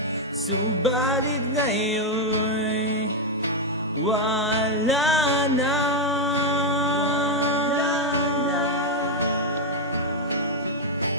Subalit ngayon wala na.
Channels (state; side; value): normal; both; correlation 0.02